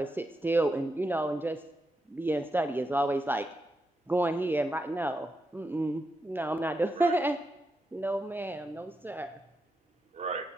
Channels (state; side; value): normal; both; correlation 0.85